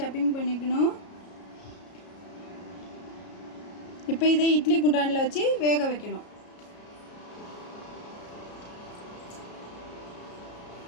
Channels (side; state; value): right; late; 33 ms